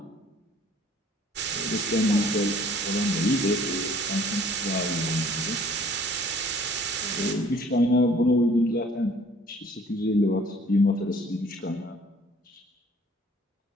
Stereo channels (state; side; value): normal; both; correlation 0.55